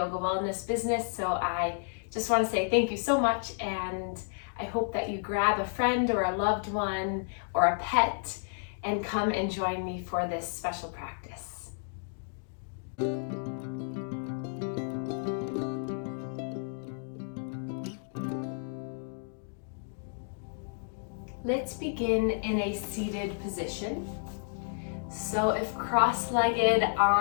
wellness business. So I just want to say thank you so much, and I hope that you grab a friend or a loved one or a pet and come and join me for this special practice. Let's begin in a seated position. So if cross-legged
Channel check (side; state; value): right; silent; digital silence